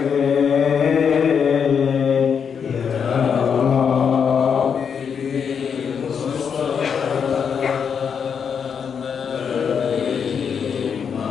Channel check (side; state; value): right; quieter; 6.9 dB